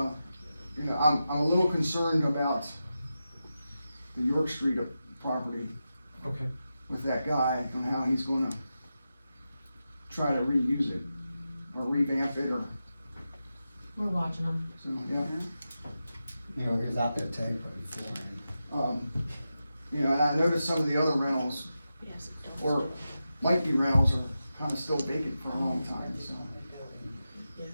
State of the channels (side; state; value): both; inverted; correlation -0.91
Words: a little concerned about the York Street property Okay. with that guy and how he's gonna try to reuse it or revamp it or We're watching them. something like that. There's out there temporary flooring. And I noticed some of the other rentals, or might be rentals, are kinda still vacant for a long time, so.